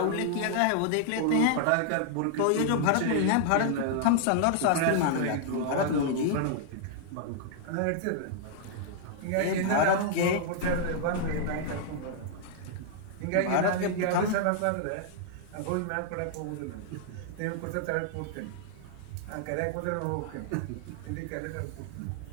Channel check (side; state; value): both; different; correlation -0.01